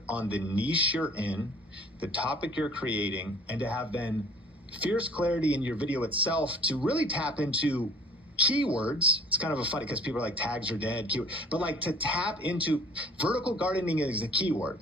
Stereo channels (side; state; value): both; normal; correlation 0.49